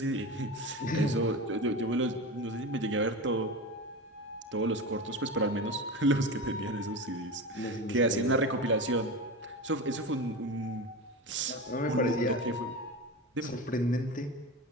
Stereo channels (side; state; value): both; normal; correlation 0.26